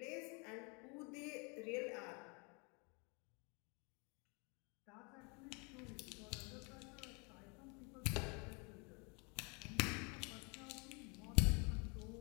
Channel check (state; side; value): quieter; right; 32.6 dB